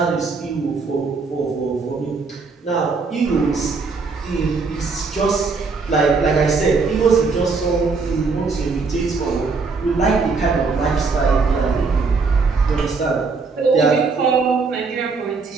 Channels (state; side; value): quieter; left; 4.4 dB